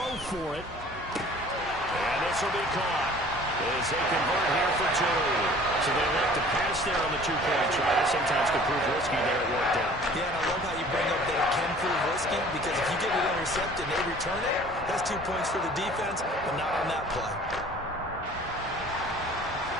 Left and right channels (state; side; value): normal; both; correlation 0.49